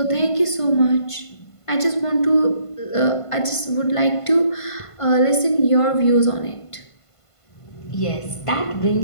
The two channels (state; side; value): late; right; 1.5 ms